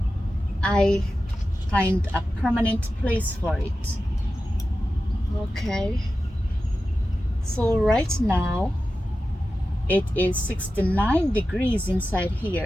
I find a permanent place for it. Okay, so right now it is 69 degrees inside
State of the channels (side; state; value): both; normal; correlation 0.93